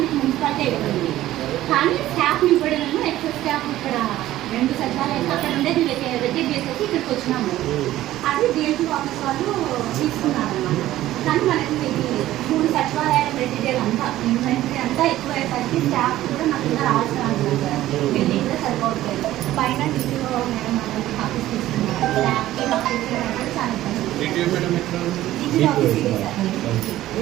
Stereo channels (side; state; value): left; quieter; 14.6 dB